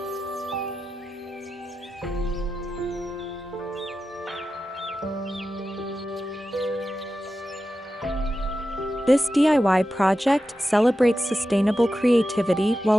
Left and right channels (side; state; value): both; normal; correlation 0.92